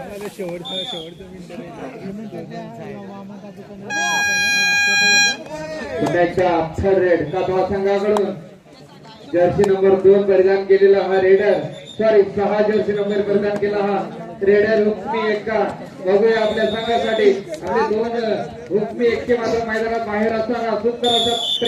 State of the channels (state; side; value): identical; both; correlation 1.00